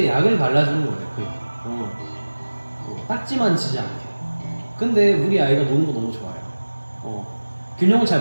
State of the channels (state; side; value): inverted; both; correlation -1.00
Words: 약을 발라주는 거예요. 딱지만 치지 않게. 근데 우리 아이가 노는 거 너무 좋아해요. 균형을